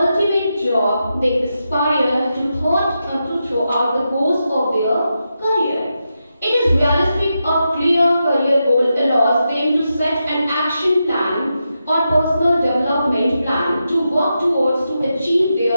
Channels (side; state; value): both; inverted; correlation -0.87